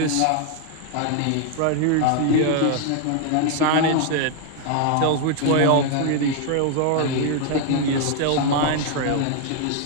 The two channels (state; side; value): different; both; correlation 0.00